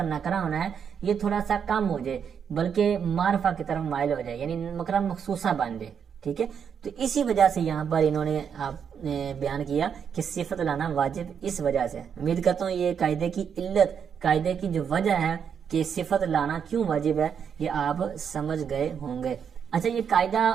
نکرہ ہونا ہے, یہ تھوڑا سا کم ہو جائے بلکہ معرفہ کی طرف مائل ہو جائے, یعنی نکرہ مخصوصہ بن جائے. ٹھیک ہے, تو اسی وجہ سے یہاں پر انہوں نے بیان کیا کہ صفت لانا واجب اس وجہ سے. امید کرتا ہوں یہ قاعدے کی علت, قاعدے کی جو وجہ ہے کہ صفت لانا کیوں واجب ہے یہ آپ سمجھ گئے ہوں گے. اچھا, یہ قاعدہ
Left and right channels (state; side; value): quieter; left; 7.4 dB